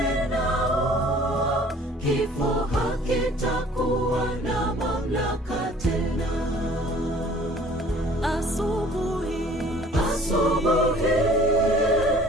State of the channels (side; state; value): both; normal; correlation 0.52